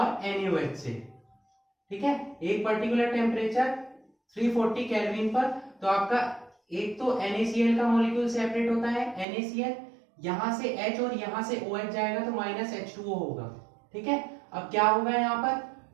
NaOH से. ठीक है, एक पर्टिकुलर टेम्परेचर 340 केल्विन पर. तो आपका एक तो NaCl का मॉलिक्यूल सेपरेट होता है, NaCl यहां से H और यहां से OH जाएगा तो -H2O होगा. ठीक है, अब क्या होगा यहाँ पर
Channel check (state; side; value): drops out; left; at 9.2 s